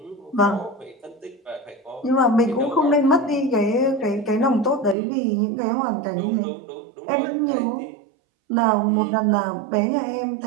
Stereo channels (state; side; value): drops out; left; at 5.0 s